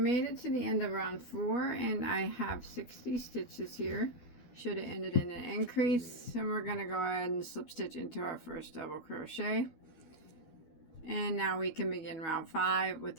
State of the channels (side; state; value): right; late; 12 ms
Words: it to the end of round 4 and I have 60 stitches here. Should have ended in an increase, and we're going to go ahead and slip stitch into our first double crochet. And now we can begin round 5 with